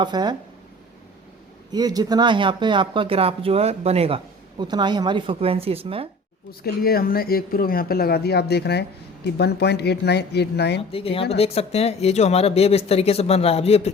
है, ये जितना यहाँ पे आपका ग्राफ जो है बनेगा उतना ही हमारी फ्रिक्वेंसी इसमें। उसके लिए हमने एक प्रोब यहाँ पे लगा दिया, आप देख रहे हैं कि 1.8989। आप देखिए यहाँ पे देख सकते हैं ये जो हमारा वेव इस तरीके से बन रहा है। अब ये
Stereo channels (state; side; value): normal; both; correlation 0.43